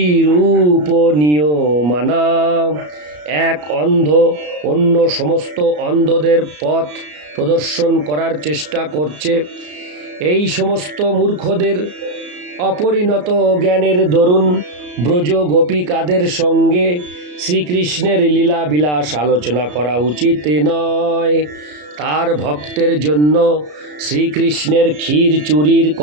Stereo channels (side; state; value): left; late; 33 ms